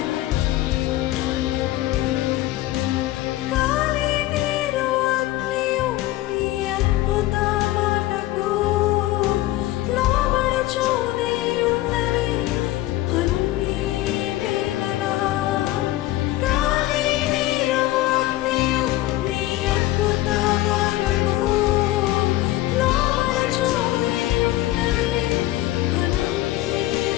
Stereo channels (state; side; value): quieter; right; 16.3 dB